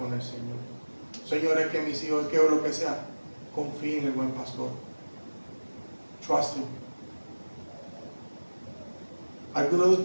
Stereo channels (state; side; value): inverted; both; correlation -1.00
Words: el Señor. Señor, es que mis hijos, es que o lo que sea, confía en el buen pastor. Trust him. ¿Alguno de